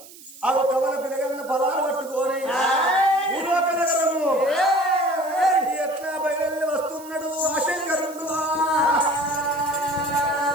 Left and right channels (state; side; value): noise; right; hiss, 19 dB below the sound